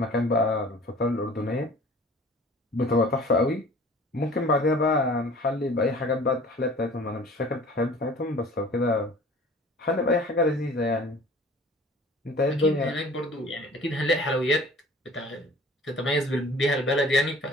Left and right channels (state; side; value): normal; both; correlation 0.47